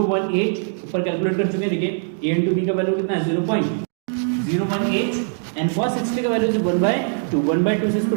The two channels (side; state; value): left; silent; digital silence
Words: ऊपर कैलकुलेट कर चुके हैं, देखिए A इंटू B का value कितना है 0.018 एंड cos 60 का वैल्यू 1/2, 1/2 से इसको